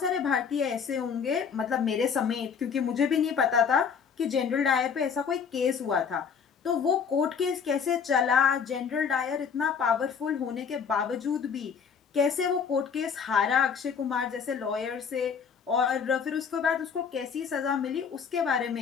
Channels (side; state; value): right; quieter; 6.5 dB